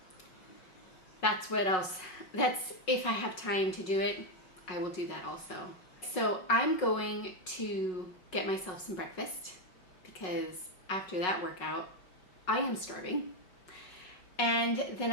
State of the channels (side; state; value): right; late; 5.5 ms